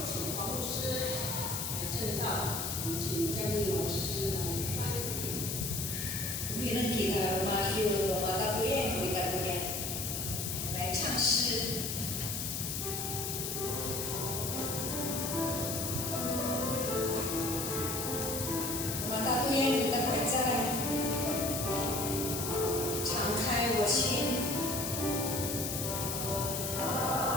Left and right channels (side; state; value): left; noise; hiss, 3 dB below the sound